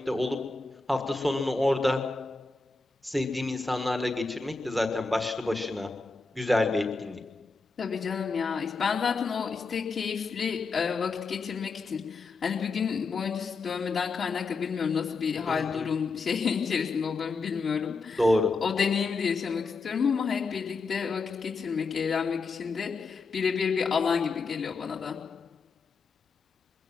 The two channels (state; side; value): quieter; right; 4.2 dB